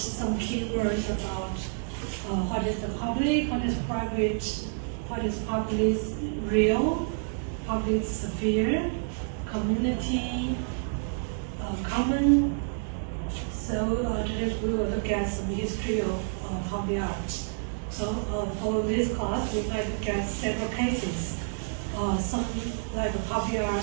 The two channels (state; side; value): silent; left; digital silence